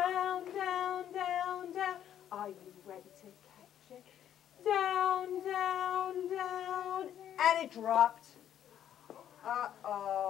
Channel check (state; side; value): quieter; right; 10.4 dB